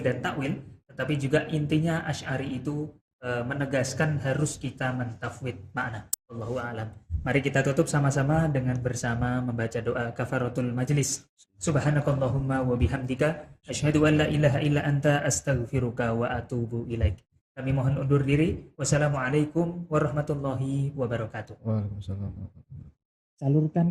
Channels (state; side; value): identical; both; correlation 1.00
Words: dan takwil, tetapi juga intinya Asy'ari itu menegaskan harus kita mentafwid makna. Wallahu a'lam. Mari kita tutup sama-sama dengan bersama membaca doa kafaratul majlis. Subhanakallahumma wa bihamdika asyhadu an la ilaha illa anta astaghfiruka wa atubu ilaik. Kami mohon undur diri. Wassalamualaikum warahmatullahi wabarakatuh. Waalaikumsalam.